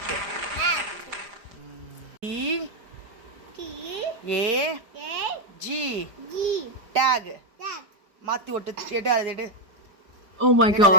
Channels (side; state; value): left; late; 4.6 ms